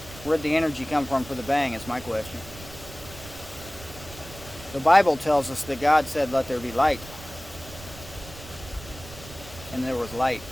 Where'd the energy come from for the bang is my question. The Bible tells us that God said, "Let there be light." And there was light.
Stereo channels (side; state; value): right; noise; rumble, 16 dB below the sound